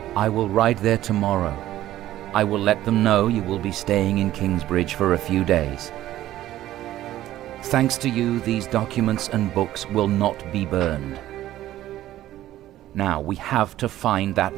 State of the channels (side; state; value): left; quieter; 13.9 dB